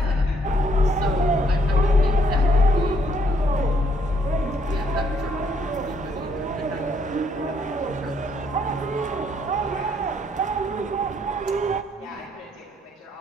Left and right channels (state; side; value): normal; both; correlation 0.69